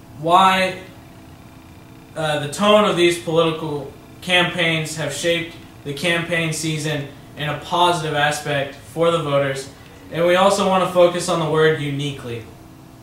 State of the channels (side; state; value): both; identical; correlation 1.00